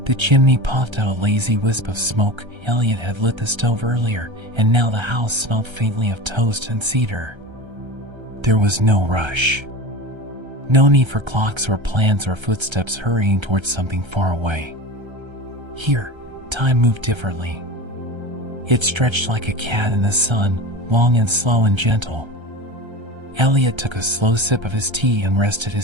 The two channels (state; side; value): late; left; 1.3 ms